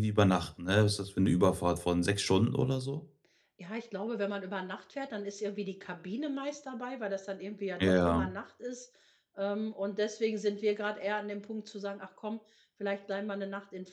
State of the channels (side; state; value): both; identical; correlation 1.00